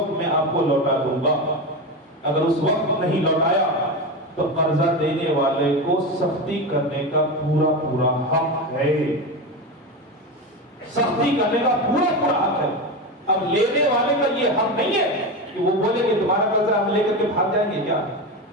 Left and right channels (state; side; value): normal; both; correlation 0.19